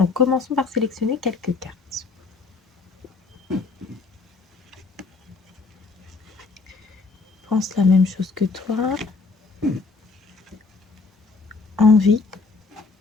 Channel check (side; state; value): right; quieter; 4.2 dB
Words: commençons par sélectionner quelques cartes. Pense la même chose que toi. Envie.